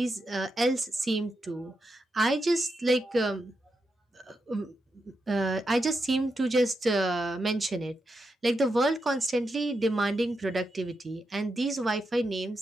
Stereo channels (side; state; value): both; normal; correlation 0.86